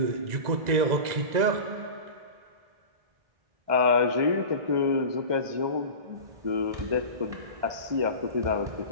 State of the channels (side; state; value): left; late; 1.9 ms